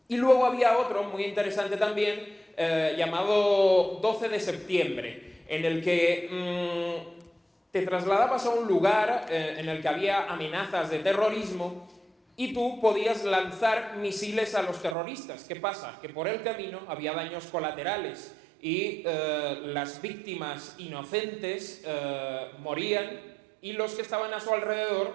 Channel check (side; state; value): left; drops out; at 15.0 s